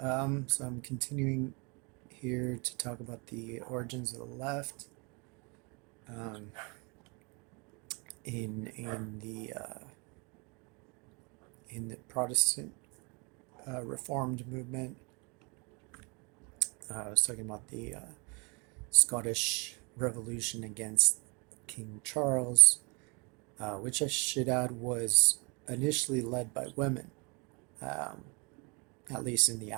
So I'm continuing here to talk about the origins of the left um, in the Protestant Reformed movement. I was talking about the Scottish Revolution against King Charles, which I should add was initially led by women, um, at least in the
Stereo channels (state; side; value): quieter; left; 31.2 dB